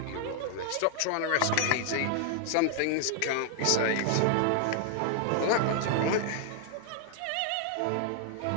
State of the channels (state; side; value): different; both; correlation 0.00